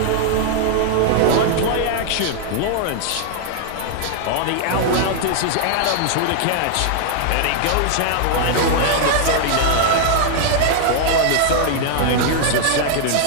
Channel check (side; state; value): both; different; correlation -0.01